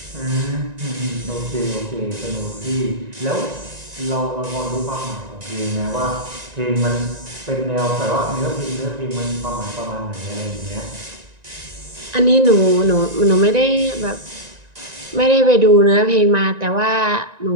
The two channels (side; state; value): left; late; 1.9 ms